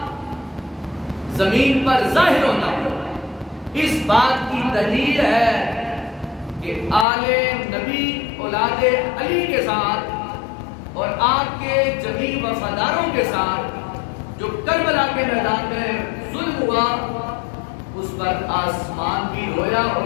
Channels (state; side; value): drops out; right; at 7.1 s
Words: زمین پر ظاہر ہونا، اس بات کی دلیل ہے کہ آل نبی اولاد علی کے ساتھ اور آپ کے جمیع وفاداروں کے ساتھ جو کربلا کے میدان میں ظلم ہوا، اس پر آسمان بھی رویا